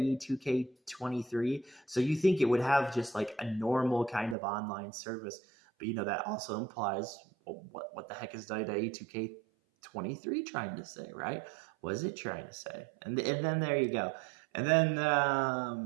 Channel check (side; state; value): left; drops out; at 4.4 s